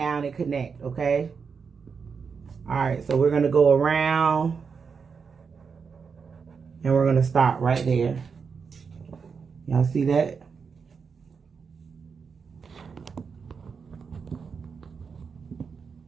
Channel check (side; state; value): left; quieter; 5.7 dB